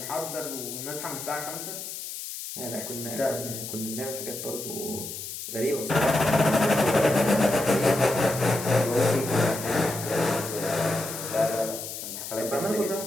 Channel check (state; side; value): noise; left; hiss, 8 dB below the sound